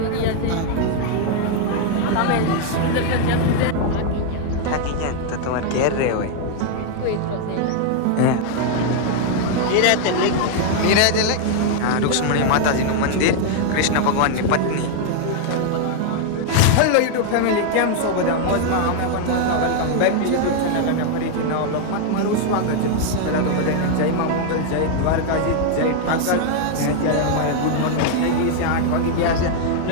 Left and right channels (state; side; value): different; both; correlation 0.00